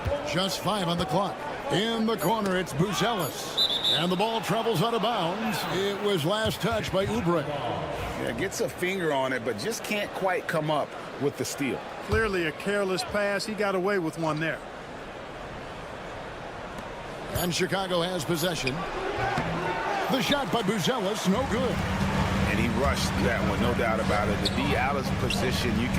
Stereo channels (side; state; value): both; identical; correlation 1.00